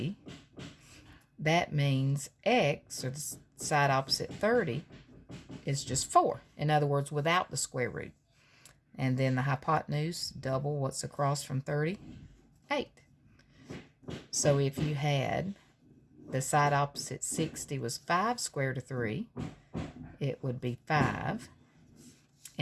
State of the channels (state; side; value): identical; both; correlation 1.00